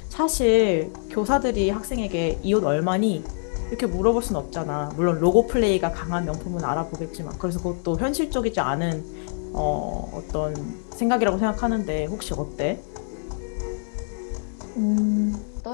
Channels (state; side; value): silent; right; digital silence